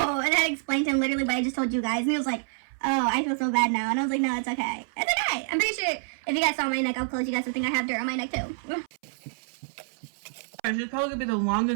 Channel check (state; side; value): silent; left; 60 dB below the other